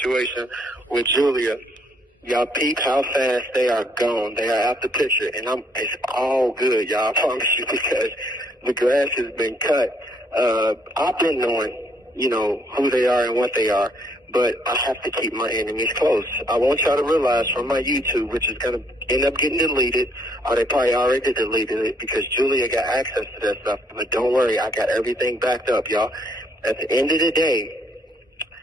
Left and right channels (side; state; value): both; normal; correlation 0.68